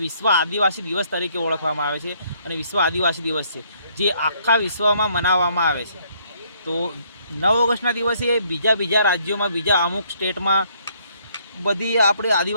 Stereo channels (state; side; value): inverted; both; correlation -0.67